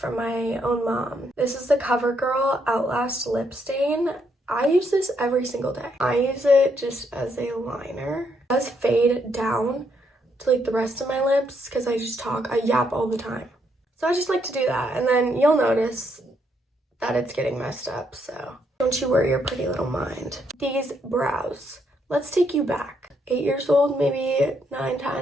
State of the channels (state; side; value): normal; both; correlation 0.75